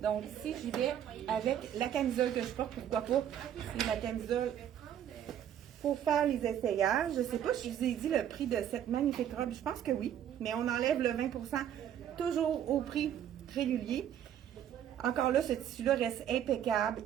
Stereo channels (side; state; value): left; quieter; 10.1 dB